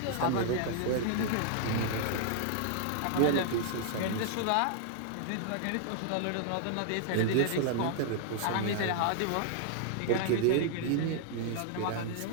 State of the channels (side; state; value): both; different; correlation 0.00